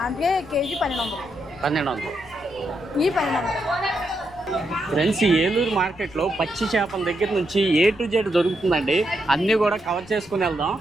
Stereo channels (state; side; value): noise; left; rumble, 23 dB below the sound